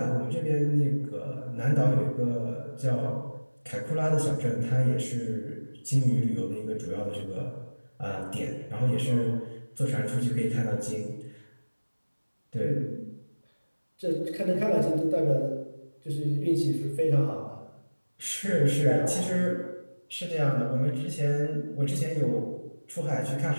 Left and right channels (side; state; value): both; inverted; correlation -1.00